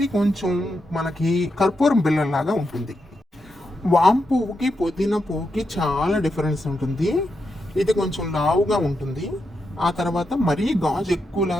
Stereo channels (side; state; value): both; normal; correlation 0.85